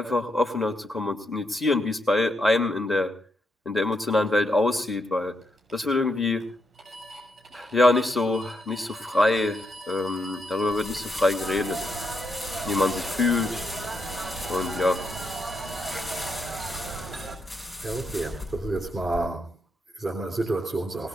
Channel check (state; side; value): normal; both; correlation 0.80